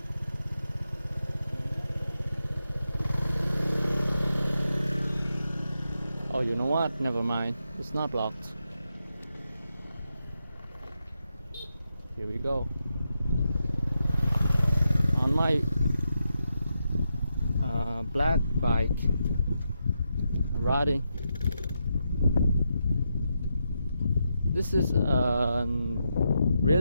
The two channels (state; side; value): inverted; both; correlation -0.85